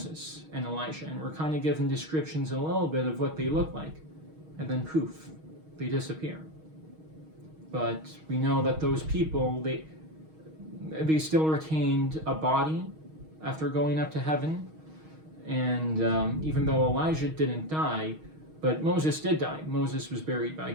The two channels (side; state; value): left; late; 6.4 ms